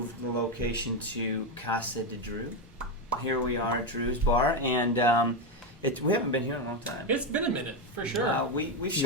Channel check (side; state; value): both; normal; correlation 0.09